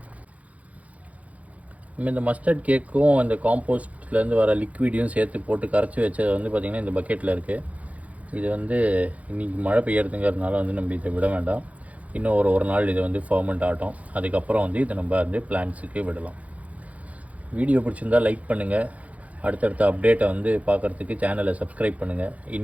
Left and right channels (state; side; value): late; left; 0.069 ms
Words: நம்ம இந்த மஸ்டர்ட் கேக்கும் அந்த காம்போஸ்ட்லேருந்து வர லிக்விடையும் சேர்த்து போட்டு கரைச்சி வச்சது வந்து பார்த்திங்கன்னா இந்த பக்கெட்டில் இருக்குது. இது வந்து இன்றைக்கி மழை பெய்யறதுங்கிறதுனால வந்து நம்ம இதை விட வேண்டாம். இன்னும் ஒரு நாள் இதை வந்து ஃபர்மெண்ட் ஆகட்டும். அதுக்கப்புறம் வந்து இதை நம்ம வந்து பிளான்ட்ஸுக்கு விடலாம். வீடியோ பிடிச்சிருந்தால் லைக் பண்ணுங்கள். அடுத்தடுத்த அப்டேட்டை வந்து பார்க்குறதுக்கு சேனலை சப்ஸ்கிரைப் பண்ணுங்கள்.